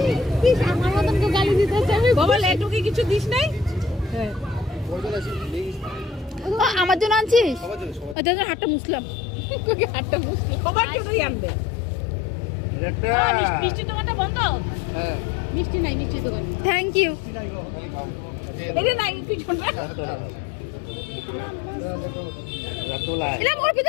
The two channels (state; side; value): drops out; right; at 8.2 s